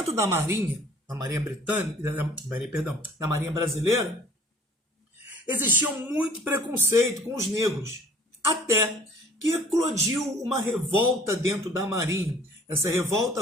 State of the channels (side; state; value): both; normal; correlation 0.52